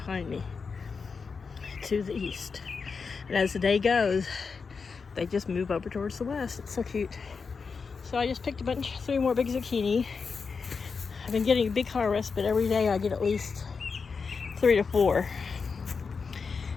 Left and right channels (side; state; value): right; quieter; 5.2 dB